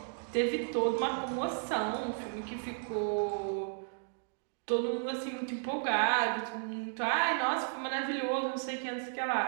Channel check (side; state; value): left; silent; digital silence